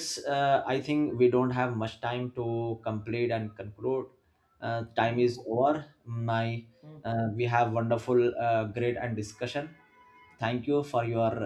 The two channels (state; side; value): identical; both; correlation 1.00